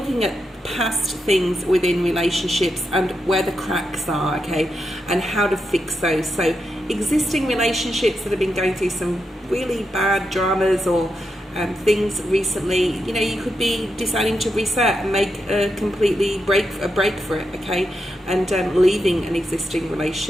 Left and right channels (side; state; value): both; normal; correlation 0.85